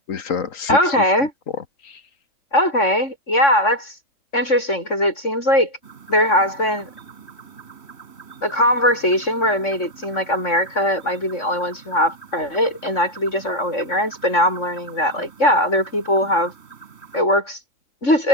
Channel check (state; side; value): late; right; 3.6 ms